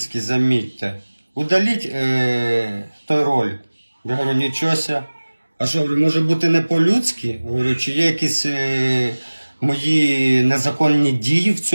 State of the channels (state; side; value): inverted; both; correlation -1.00